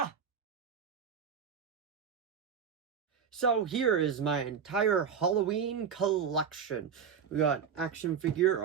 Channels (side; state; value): left; quieter; 7.0 dB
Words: So here is my entire Halloween collection. We got action figure,